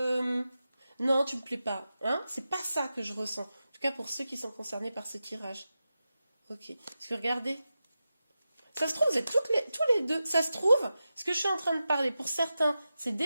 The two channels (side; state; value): both; inverted; correlation -0.92